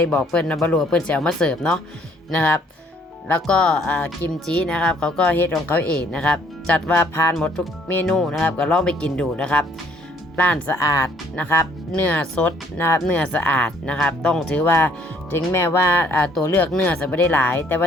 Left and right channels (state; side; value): normal; both; correlation 0.63